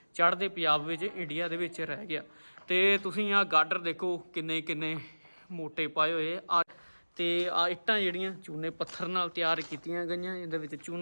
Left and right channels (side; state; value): both; inverted; correlation -1.00